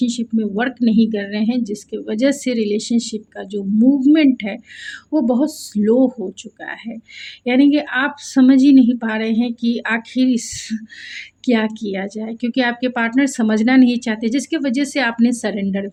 में वर्क नहीं कर रहे हैं, जिसकी वजह से रिलेशनशिप का जो मूवमेंट है वो बहुत स्लो हो चुका है। यानी कि आप समझ ही नहीं पा रहे हैं कि आखिर इस क्या किया जाए, क्योंकि आपके पार्टनर समझना नहीं चाहते, जिसकी वजह से आपने सरेंडर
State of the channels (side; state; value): both; identical; correlation 1.00